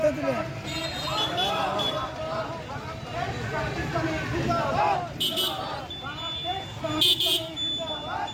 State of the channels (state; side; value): identical; both; correlation 1.00